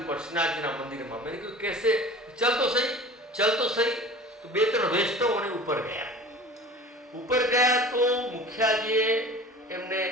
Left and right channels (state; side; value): normal; both; correlation 0.40